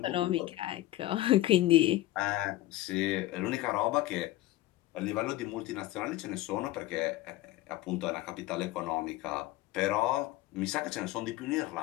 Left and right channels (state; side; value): quieter; right; 16.4 dB